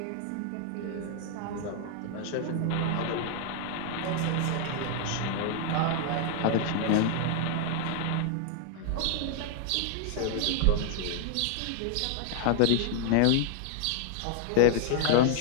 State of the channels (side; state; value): both; different; correlation 0.00